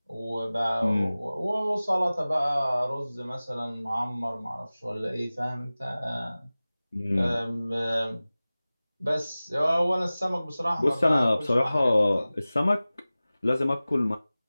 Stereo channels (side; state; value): both; inverted; correlation -0.98